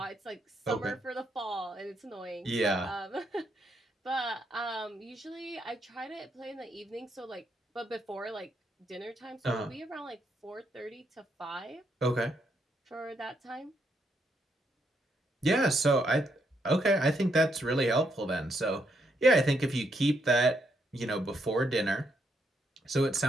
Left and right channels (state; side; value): normal; both; correlation 0.77